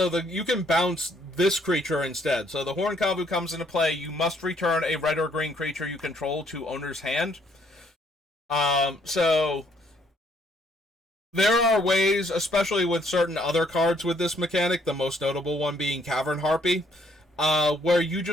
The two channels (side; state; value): both; normal; correlation 0.67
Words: can bounce this creature instead. So the Horn Kavu comes into play. You must return a red or green creature you control to owner's hand. So there are ways, especially with certain other cards with this mechanic, the most notable one being Cavern Harpy, where you